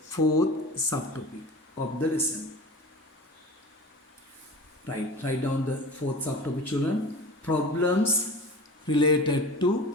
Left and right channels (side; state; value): both; normal; correlation 0.36